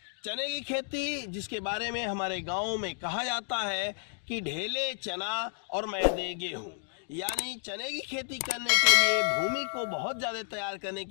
चने की खेती जिसके बारे में हमारे गाँव में कहा जाता है कि ढेले चना और मैदे गेहूँ, यानी चने की खेती करने के लिए भूमि को बहुत ज़्यादा तैयार करने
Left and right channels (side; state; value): right; silent; digital silence